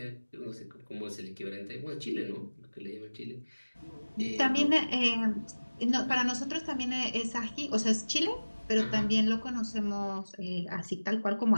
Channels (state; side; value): inverted; both; correlation -1.00